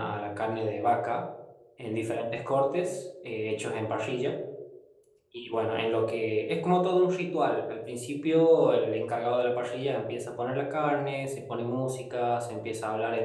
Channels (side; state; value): both; identical; correlation 1.00